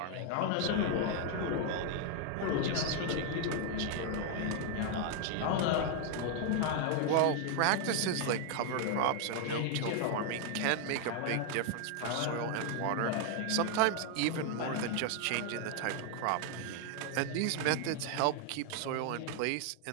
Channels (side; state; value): both; different; correlation 0.00